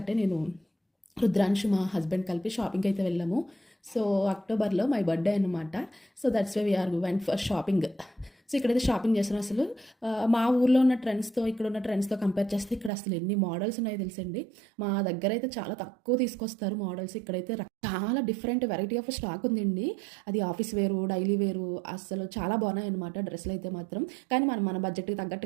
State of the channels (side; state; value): left; drops out; at 12.9 s